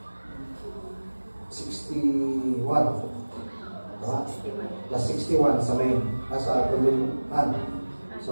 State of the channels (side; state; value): both; inverted; correlation -1.00